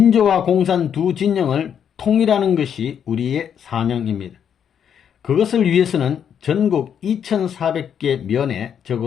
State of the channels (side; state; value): right; quieter; 8.4 dB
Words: 공산 두 진영을 통일하는 것이 우리의 사명입니다. 그것을 위해서는 전국 2,400개 면에